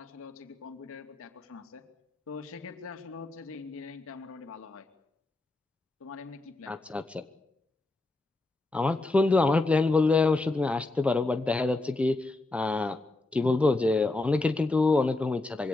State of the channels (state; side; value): quieter; right; 3.1 dB